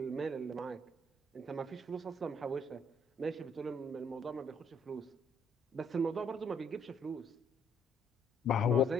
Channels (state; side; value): normal; both; correlation 0.67